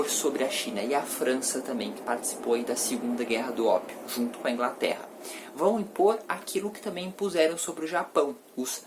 sobre a China? E a França também, que participou aí da Segunda Guerra do Ópio, junto com a Inglaterra. Vão impor aquilo que também impuseram sobre o Japão, os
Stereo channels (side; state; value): both; identical; correlation 1.00